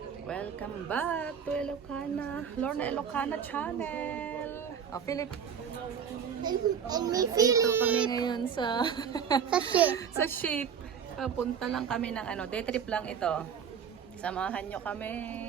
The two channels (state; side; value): quieter; left; 7.4 dB